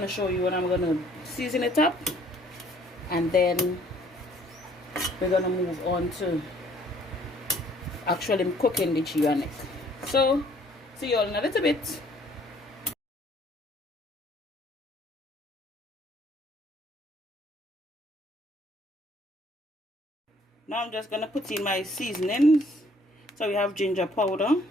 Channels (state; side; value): normal; both; correlation 0.60